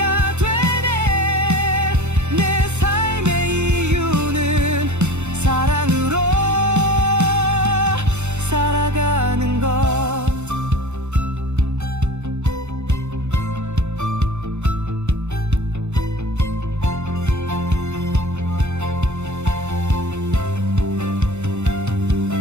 되네. 내 삶의 이유는 사랑으로 살아가는 것.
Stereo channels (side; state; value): left; late; 0.82 ms